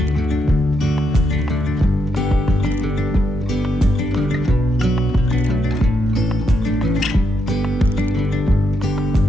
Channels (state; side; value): normal; both; correlation 0.80